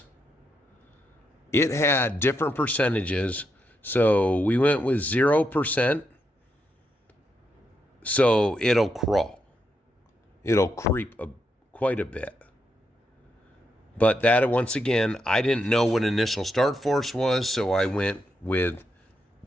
It had different percentages, so we went with 0%. So it'll crawl. It'll creep quite a bit. But that, once again, I didn't know what initial start force was, so I went with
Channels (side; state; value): both; normal; correlation 0.82